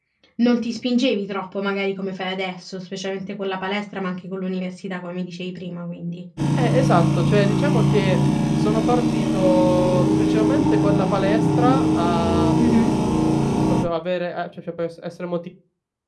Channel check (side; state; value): both; identical; correlation 1.00